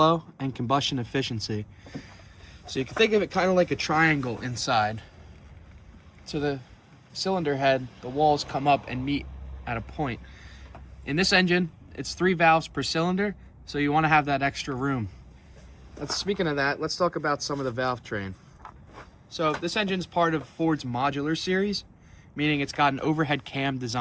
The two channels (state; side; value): identical; both; correlation 1.00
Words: and combustion efficiency. So you can think of it kind of like a triangle inside. So the cylinder head, the walls come up and meet at a point. In this engine, it's 3 valves per cylinder, so you want to have that extra room. Speaking of that, let's talk about some of the valve train. So this engine is part of Ford's modular series, meaning it's got an overhead cam